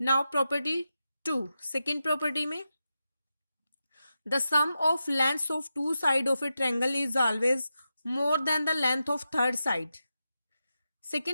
property 2, second property में the sum of length of two side of a triangle is always more than the length of third side.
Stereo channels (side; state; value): both; inverted; correlation -0.89